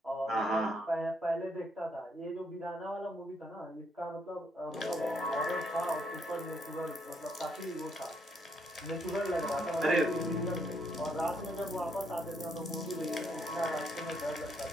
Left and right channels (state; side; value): normal; both; correlation 0.73